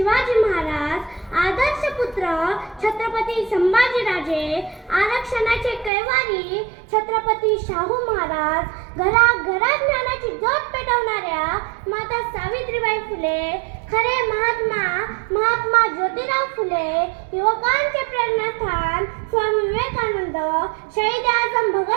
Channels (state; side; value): drops out; left; at 5.9 s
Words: महाराज आदर्श पुत्र छत्रपती संभाजीराजे आरक्षणाचे कैवारी छत्रपती शाहू महाराज घराघरात ज्ञानाची ज्योत पेटवणाऱ्या माता सावित्रीबाई फुले खरे महात्मा ज्योतिराव फुले युवकांचे प्रेरणास्थान स्वामी विवेकानंद शहीद आजम